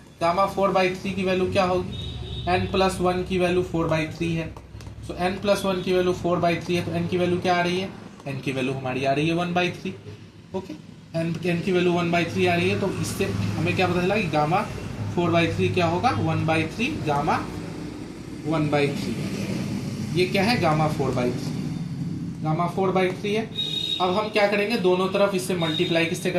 गामा 4/3 की वैल्यू क्या होगी? n+1 की वैल्यू 4/3 है। सो n+1 की वैल्यू 4/3 है, तो n की वैल्यू क्या आ रही है? n की वैल्यू हमारी आ रही है 1/3। ओके, n की वैल्यू 1/3 आ रही है, तो इससे हमें क्या पता चला कि गामा 4/3 क्या होगा? 1/3 गामा 1/3। ये क्या है? गामा 4/3। गामा 4/3 है। अब हम क्या करेंगे? दोनों तरफ इससे मल्टीप्लाई किससे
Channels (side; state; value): both; identical; correlation 1.00